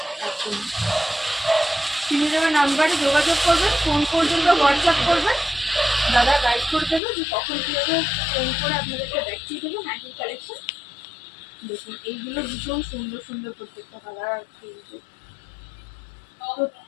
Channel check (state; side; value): drops out; right; at 7.0 s